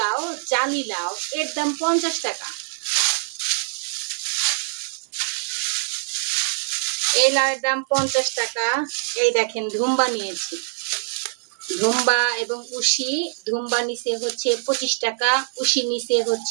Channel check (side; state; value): left; silent; 63 dB below the other